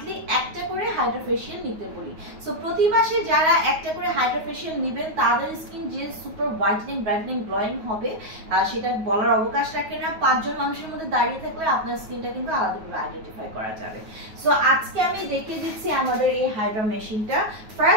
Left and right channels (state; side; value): late; left; 9.3 ms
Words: একটা করে হাইড্রা ফেশিয়াল নিতে বলি। সো প্রতি মাসে যারা একটা করে হাইড্রা ফেশিয়াল নেবেন তাদের স্কিন যে সুপার হোয়াইটেনিং ব্রাইটেনিং গ্লোয়িং হবে সেটা বলার অবকাশ রাখে না। 5 জন মানুষের মধ্যে দাঁড়িয়ে থাকলে আপনার স্কিনটা কিন্তু আলাদাভাবে আইডেন্টিফাই করা যাবে। সো আজকে আমি দেখিয়ে দিচ্ছি আমাদের এই হাইড্রা মেশিনটা।